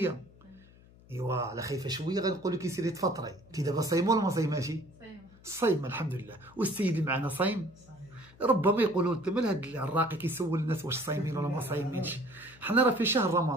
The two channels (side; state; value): left; noise; hum, 24 dB below the sound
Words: ايوا على خايفه شويه غنقول لك سيري تفطري. انت دابا صايمه ولا ما صايماشي؟ صايمه الحمد لله. والسيد اللي معنا صايم؟ ربما يقولوا انت مال هاد الراقي كيسول الناس واش صايمين ولا ما صايمينش. حنا راه في شهر